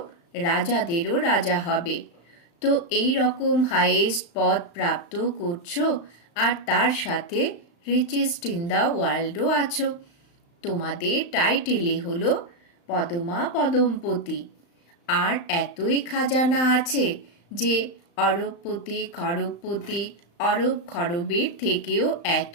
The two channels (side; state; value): right; late; 35 ms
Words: রাজাদেরও রাজা হবে। তো এই রকম হাইয়েস্ট পদ প্রাপ্ত করছো আর তার সাথে রিচেস্ট ইন দ্য ওয়ার্ল্ডও আছো। তোমাদের টাইটেলই হলো পদমা পদমপতি। আর এতই খাজানা আছে যে অরবপতি, খরবপতি, অরব খরবের থেকেও